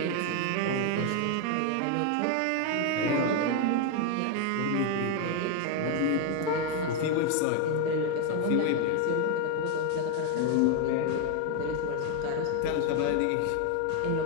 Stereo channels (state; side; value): different; both; correlation 0.01